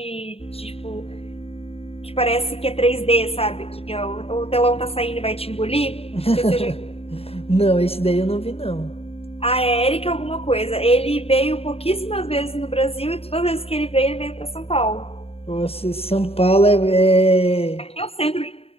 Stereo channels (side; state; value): right; late; 0.28 ms